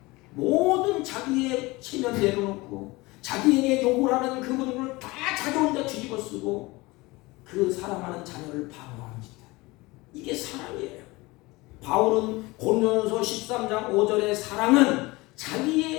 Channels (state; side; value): quieter; right; 22.3 dB